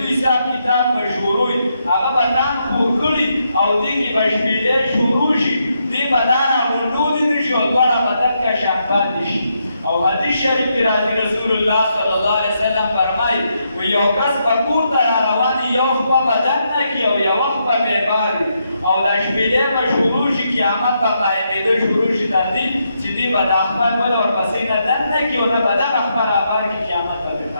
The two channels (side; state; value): both; inverted; correlation -0.80